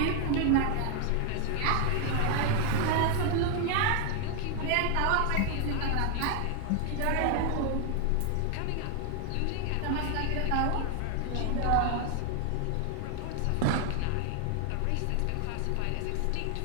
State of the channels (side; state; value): both; different; correlation 0.00